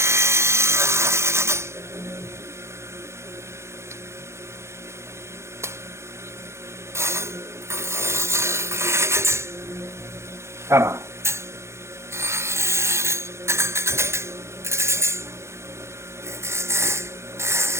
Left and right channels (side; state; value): left; late; 0.13 ms